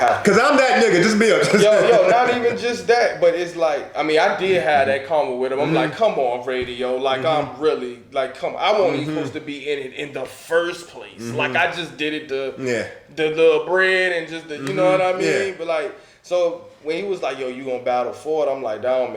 Cause I'm that nigga. Just be honest. Yo, not even just that, but it's like, I mean, I did have that comment with him. I'm like, come on, radio, like I'm really like, come on. I wasn't even supposed to be in it in the first place. Like I just did it the little bread and just the, you know what I mean? Yeah. But like, so when he was like, yo, you gonna battle for it? I'm like, that don't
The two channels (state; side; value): identical; both; correlation 1.00